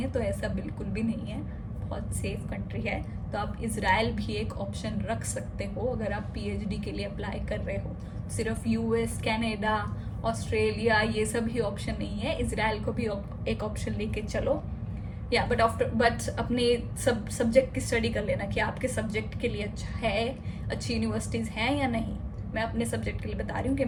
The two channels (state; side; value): identical; both; correlation 1.00